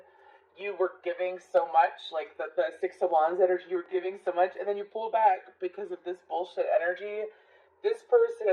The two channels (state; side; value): identical; both; correlation 1.00